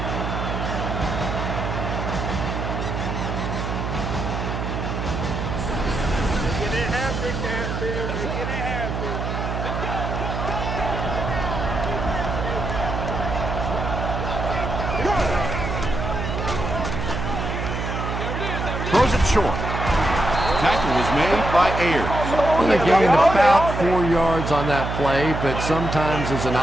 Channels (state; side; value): noise; right; hum, 3 dB below the sound